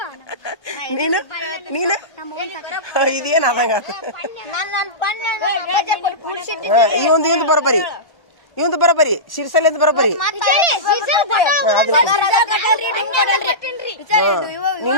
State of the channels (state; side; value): late; right; 1.0 ms